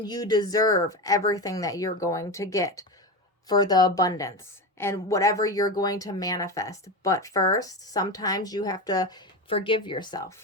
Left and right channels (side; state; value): both; normal; correlation 0.20